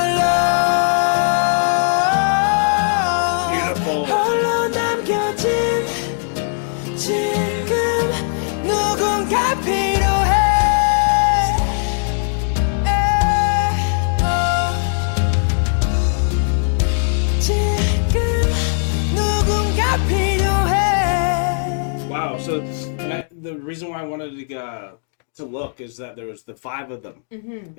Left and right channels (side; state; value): right; silent; digital silence